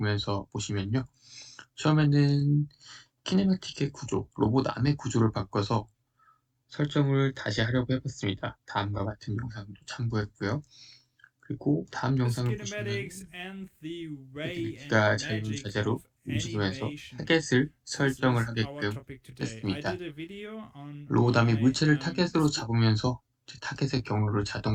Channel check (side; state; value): both; identical; correlation 1.00